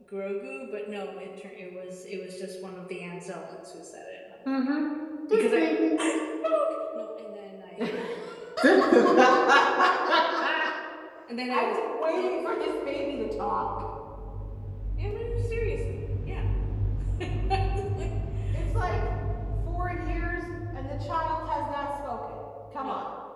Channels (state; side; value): identical; both; correlation 1.00